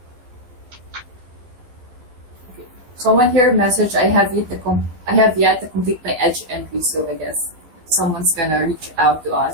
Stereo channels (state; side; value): late; left; 12 ms